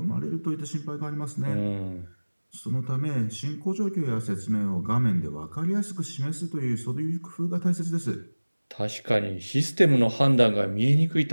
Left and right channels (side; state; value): both; inverted; correlation -1.00